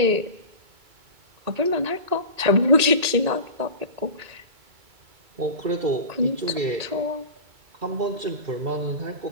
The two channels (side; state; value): left; late; 2.3 ms